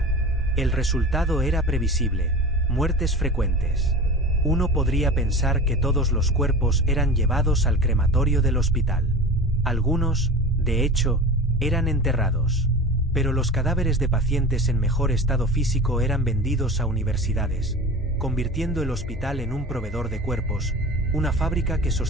El resultado era previsible, muertes frecuentes. Uno podría pensar que todos los cuerpos eran llevados al crematorio del hospital. Algunos, de hecho, eran enterrados. Pero los cadáveres de pacientes en mejor estado físico eran vendidos a universidades, convirtiendo el hospital en un proveedor de cuerpos, una fábrica que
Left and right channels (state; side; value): normal; both; correlation 0.34